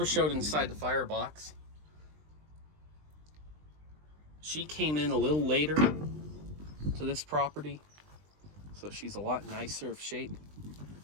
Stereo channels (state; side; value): late; left; 20 ms